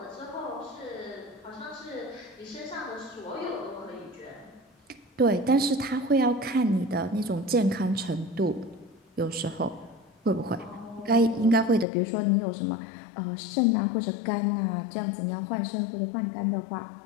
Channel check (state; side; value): drops out; right; at 11.9 s